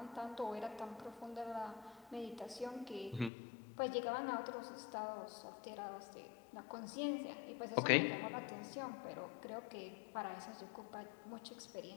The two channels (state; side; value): drops out; right; at 3.3 s